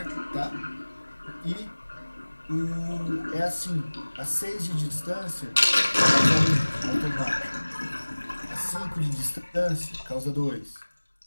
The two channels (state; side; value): inverted; both; correlation -1.00